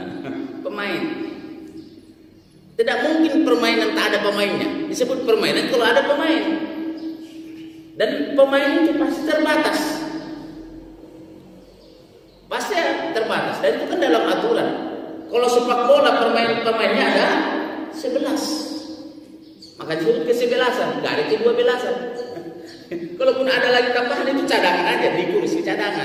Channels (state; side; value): identical; both; correlation 1.00